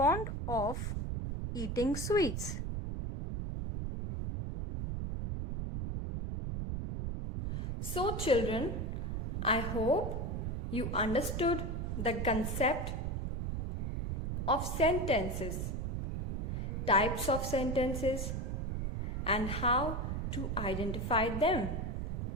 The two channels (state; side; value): noise; right; rumble, 2 dB below the sound